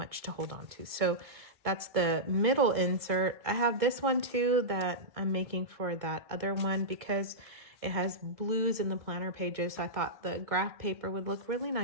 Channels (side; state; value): left; late; 1.8 ms